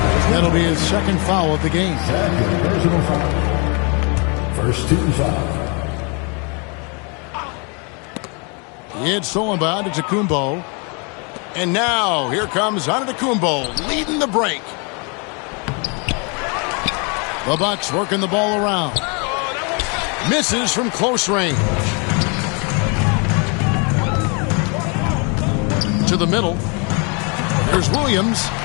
That'll be his second foul of the game. Personal foul. First team foul. It's stolen by Antetokounmpo. And now, here comes Antetokounmpo leading the break. The Bucks working the ball around. Misses from close range. To the middle. There's Williams.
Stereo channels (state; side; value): quieter; right; 33.8 dB